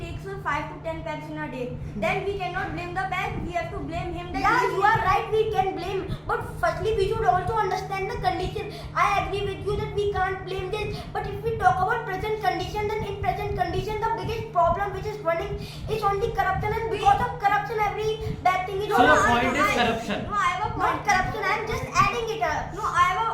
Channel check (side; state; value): both; identical; correlation 1.00